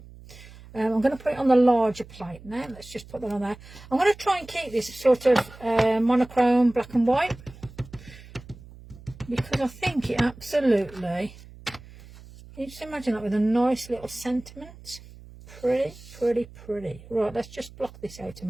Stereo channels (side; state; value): right; noise; hum, 19 dB below the sound